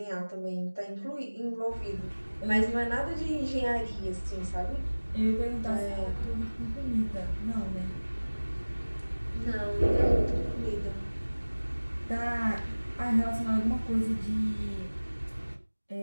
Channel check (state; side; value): inverted; both; correlation -1.00